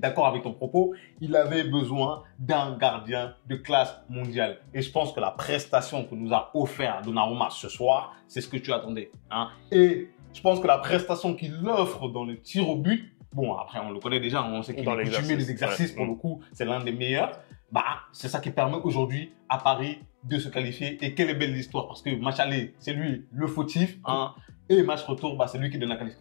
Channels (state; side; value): silent; right; 59 dB below the other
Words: avec ton propos, il avait besoin d'un gardien de classe mondiale. Et je pense que la prestation que nous a offert Donnarumma ce soir, c'est ce que tu attendais. Hein. Et je pense que la prestation qu'il offre dans le tir au but, bon, après, on le connaît déjà, on sait qu'il est coutumier des exercices, pour le coup, c'est l'un des meilleurs. C'est ça qui permet aujourd'hui à Paris de se qualifier. Et quelle est belle l'histoire, parce que match aller, c'est lui le fautif, hein, et match retour, c'est lui qui donne la